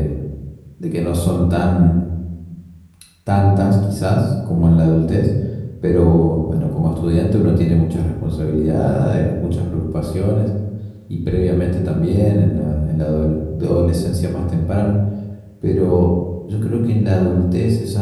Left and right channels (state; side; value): identical; both; correlation 1.00